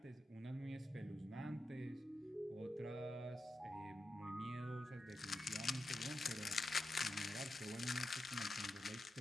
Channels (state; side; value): normal; both; correlation 0.89